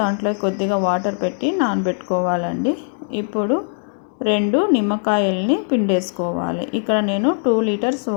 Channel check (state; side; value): silent; right; digital silence